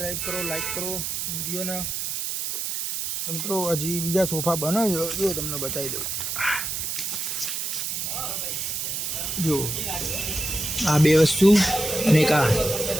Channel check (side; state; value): right; noise; hiss, 2 dB below the sound